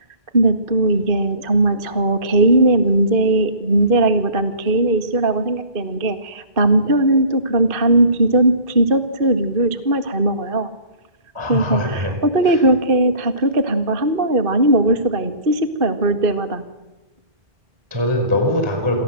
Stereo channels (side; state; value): left; late; 2.5 ms